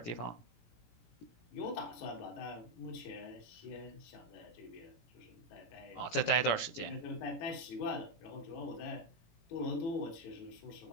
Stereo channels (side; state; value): right; late; 18 ms